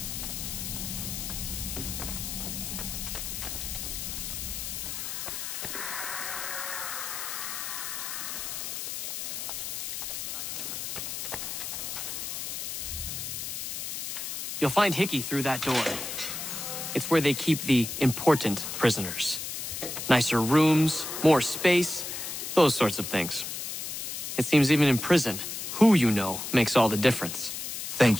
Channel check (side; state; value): left; noise; hiss, 5 dB below the sound